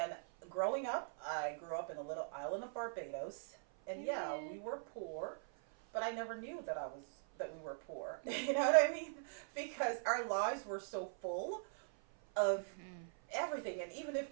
growing up, I grew up in a little island of Barbados, and yeah, we were poor, but I never knew that we were poor. You know what I mean? Because our lives were so full of everything, and even if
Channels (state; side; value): silent; left; 50 dB below the other